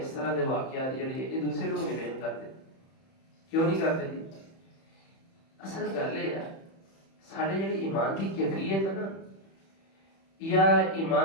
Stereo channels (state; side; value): late; right; 31 ms